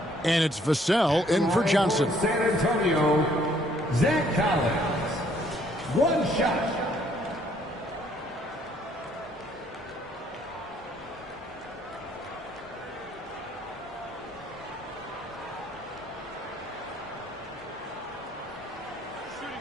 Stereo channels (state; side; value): normal; both; correlation 0.64